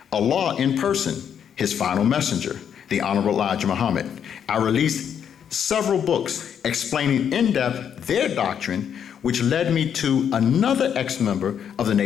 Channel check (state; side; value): quieter; right; 8.4 dB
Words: Allah in person, his final messenger, the Honorable Elijah Muhammad. I released several books explaining in depth their doctrine, which led me to another ex-member of the